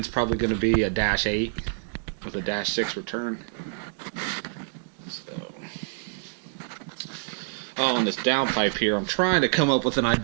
probably going to be a -8 with a -6 return. So, on this downpipe here, I'm trying to come up with an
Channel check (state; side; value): silent; left; digital silence